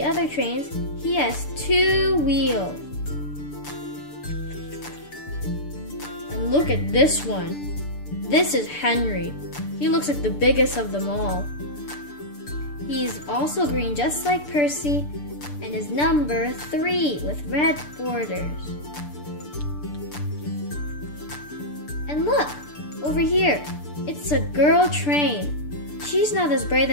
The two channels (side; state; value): right; late; 6.8 ms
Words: other trains, he has 2 wheels. And look at this one. This is Henry. He looks like the biggest of them all. He's also green just like Percy and is number 3 with red borders. And look, over here, it's a girl train. She's not as bright